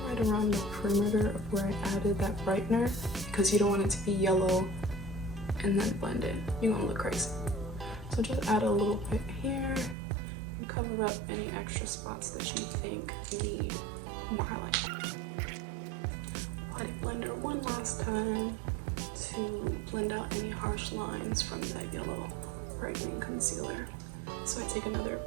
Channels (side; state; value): left; drops out; at 10.0 s